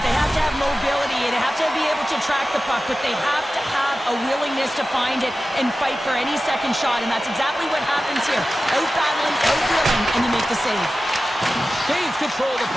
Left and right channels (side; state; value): both; normal; correlation 0.94